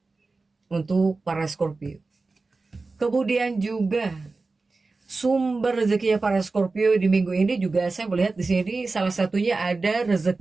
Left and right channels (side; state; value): left; quieter; 3.7 dB